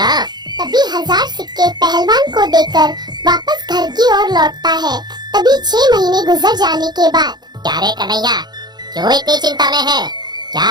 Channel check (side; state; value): left; late; 0.20 ms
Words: तभी 1000 सिक्के पहलवान को देकर वापस घर की ओर लौटता है। तभी 6 महीने गुजर जाने के बाद, क्या रे कन्हैया, क्यों इतनी चिंता में है? क्या